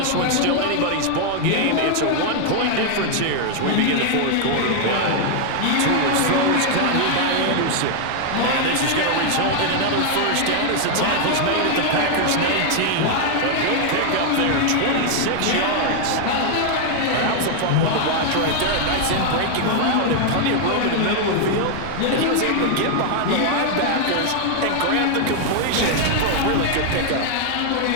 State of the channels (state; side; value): different; both; correlation 0.00